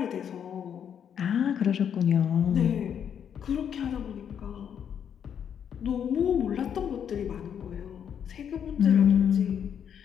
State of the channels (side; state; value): right; quieter; 8.4 dB